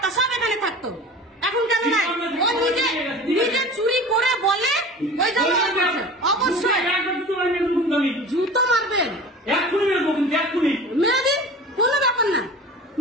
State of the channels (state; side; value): normal; both; correlation 0.38